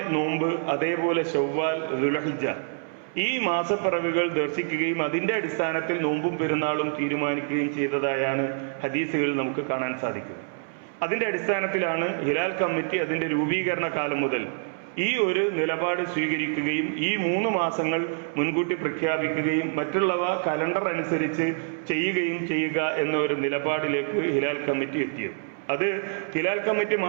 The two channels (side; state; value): left; silent; 61 dB below the other